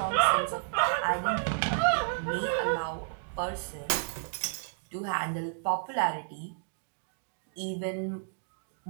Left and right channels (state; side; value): silent; left; digital silence